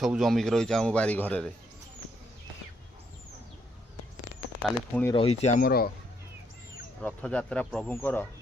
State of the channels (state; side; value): normal; both; correlation 0.73